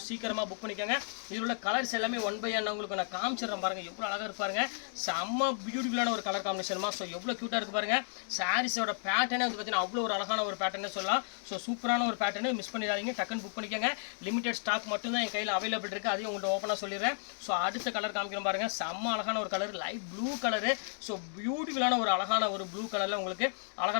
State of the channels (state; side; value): silent; right; digital silence